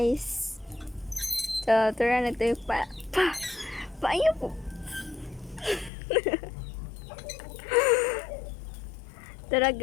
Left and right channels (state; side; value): drops out; right; at 5.9 s